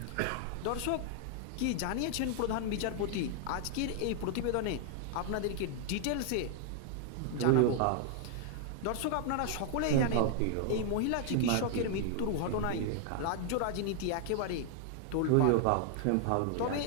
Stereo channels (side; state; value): both; different; correlation 0.00